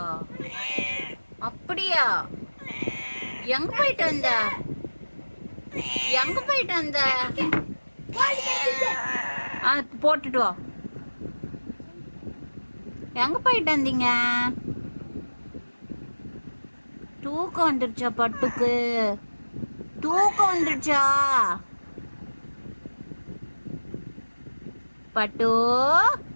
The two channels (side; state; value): both; inverted; correlation -1.00